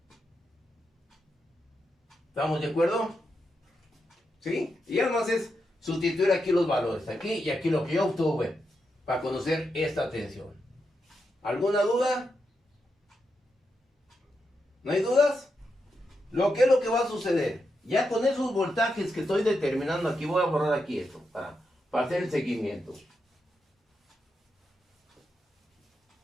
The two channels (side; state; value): both; normal; correlation 0.85